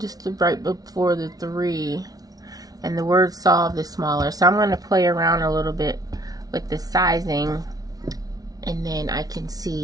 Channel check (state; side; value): late; left; 0.18 ms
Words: right before the 3, and the word solved is smaller. So I'm going to play around a little bit with the sizing, and then I can